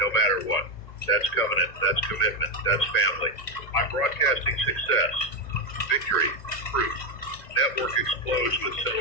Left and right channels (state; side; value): late; right; 1.9 ms